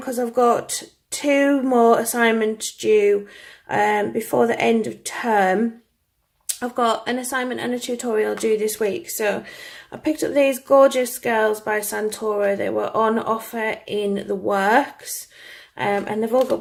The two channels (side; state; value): both; identical; correlation 1.00